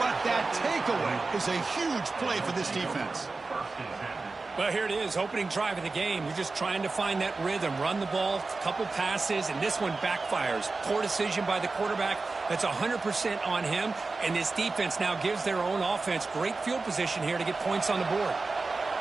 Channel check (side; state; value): left; quieter; 3.8 dB